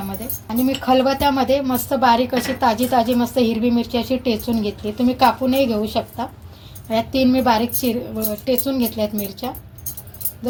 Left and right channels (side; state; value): both; identical; correlation 1.00